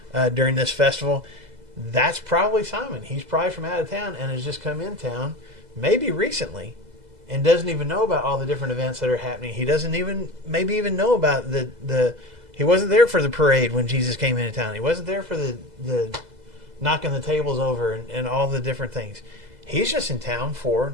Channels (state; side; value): late; left; 2.0 ms